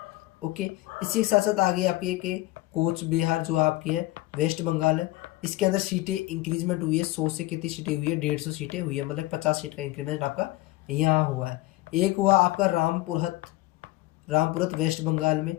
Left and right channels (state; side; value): quieter; right; 18.1 dB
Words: ओके, इसी के साथ साथ आ गई आपकी एक कोच बिहार जो आपकी है वेस्ट बंगाल है, इसके अंदर सीटें इंक्रीजमेंट हुई है। 100 से कितनी सीटें हुई है, 150 सीटें हुई है, मतलब 50 सीट का इंक्रीमेंट आपका यहाँ हुआ है। एक हुआ आपका रामपुरत वेस्ट बंगाल में,